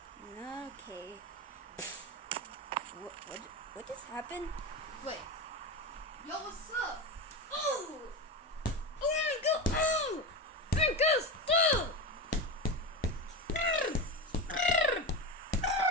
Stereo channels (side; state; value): both; normal; correlation 0.21